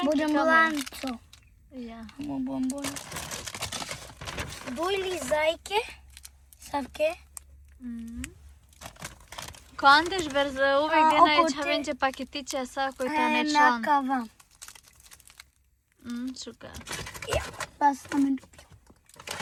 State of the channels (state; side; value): identical; both; correlation 1.00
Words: Budem kamer? lanco. Ja. Amo bombon. Dojli zajke. Savke. Ko Andeš brzo uvijek gdje oko najveća te- venče paketiće, a sad koji to ne član. Nakava. Šuka. Ja, pa sam me dobio.